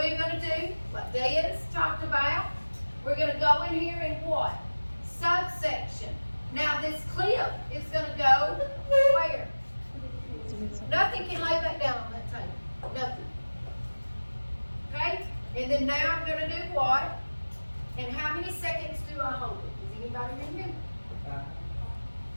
going to do what Diaz talked about. We're going to go in here and what? Subsection. Now this clip is going to go where? Nothing can lay back down on that table. Nothing. Okay? And then now I'm going to do what? And how many seconds do I hold it? Does anybody remember?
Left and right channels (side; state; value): both; inverted; correlation -1.00